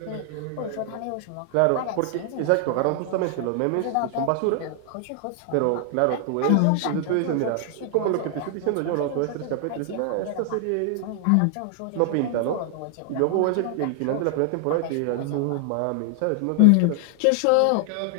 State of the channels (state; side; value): different; both; correlation 0.00